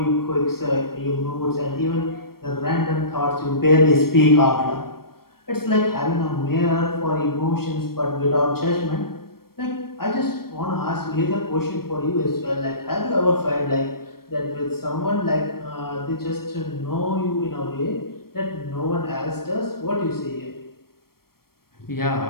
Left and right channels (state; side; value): late; right; 0.94 ms